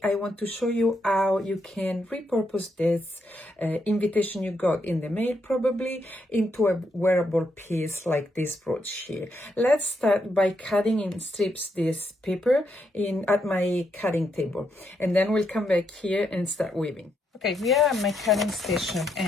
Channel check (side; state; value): both; normal; correlation 0.79